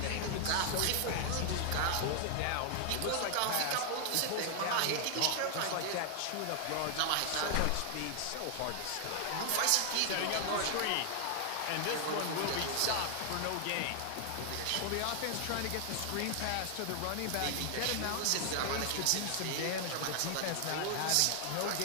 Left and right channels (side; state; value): both; different; correlation 0.00